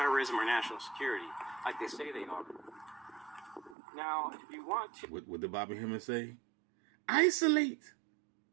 or national security like they say they are. Now, if you want to... What did Bobby Hemmings say? Isolate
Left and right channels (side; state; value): left; drops out; at 3.8 s